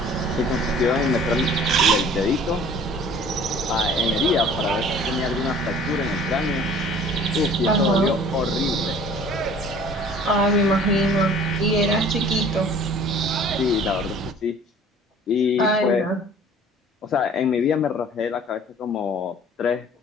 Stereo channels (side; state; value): both; normal; correlation 0.49